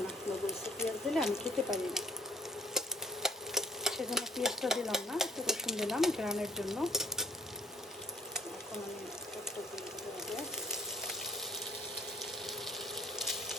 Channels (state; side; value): normal; both; correlation 0.58